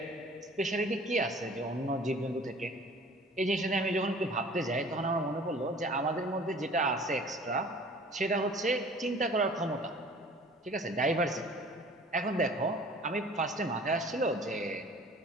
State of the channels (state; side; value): normal; both; correlation 0.47